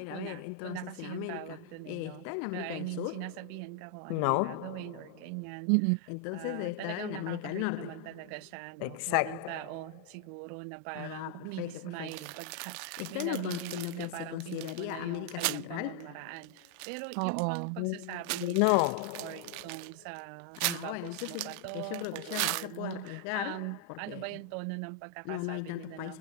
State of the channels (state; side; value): different; both; correlation 0.00